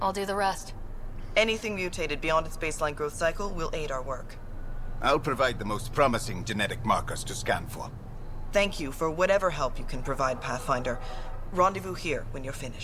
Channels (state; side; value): identical; both; correlation 1.00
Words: I'll do the rest. Anything mutated beyond its baseline growth cycle will aid our work. I'll provide the most promising genetic markers to scan for. Thank you for whatever help you can provide, Pathfinder. Rendezvous here when you're